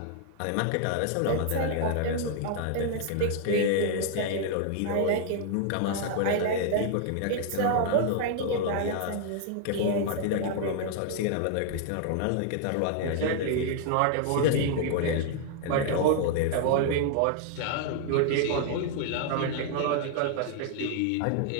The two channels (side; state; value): both; different; correlation 0.00